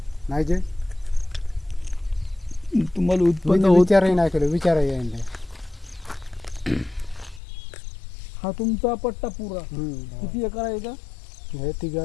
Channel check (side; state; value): right; drops out; at 7.4 s